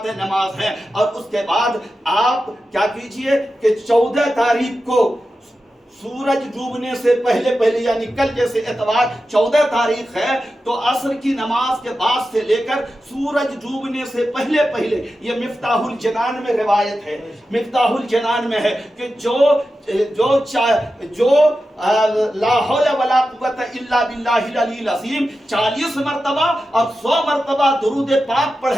نماز ہیں. اور اس کے بعد آپ کیا کیجئے کہ 14 تاریخ کو سورج ڈوبنے سے پہلے یعنی کل جیسے اتوار 14 تاریخ ہے، تو عصر کی نماز کے بعد سے لے کر سورج ڈوبنے سے پہلے یہ مفتاح الجنان میں روایت ہے، مفتاح الجنان میں ہے کہ جو لا حول ولا قوت الا باللہ العلی العظیم 40 مرتبہ اور 100 مرتبہ درود پاک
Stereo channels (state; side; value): normal; both; correlation 0.92